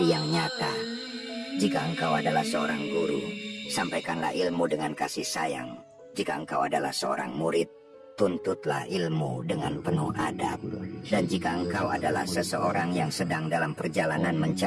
yang nyata. Jika engkau adalah seorang guru, sampaikanlah ilmu dengan kasih sayang. Jika engkau adalah seorang murid, tuntutlah ilmu dengan penuh adab. Dan jika engkau adalah seseorang yang sedang dalam perjalanan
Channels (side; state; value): both; identical; correlation 1.00